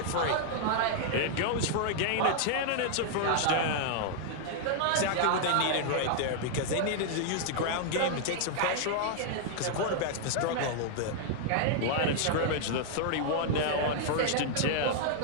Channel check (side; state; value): both; different; correlation -0.01